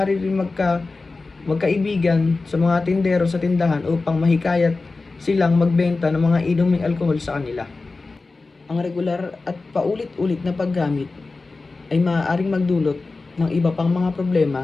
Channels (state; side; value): quieter; right; 3.7 dB